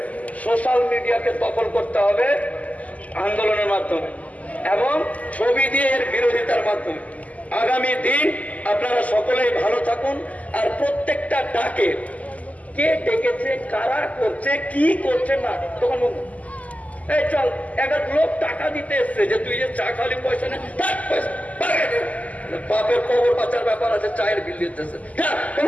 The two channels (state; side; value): late; right; 0.073 ms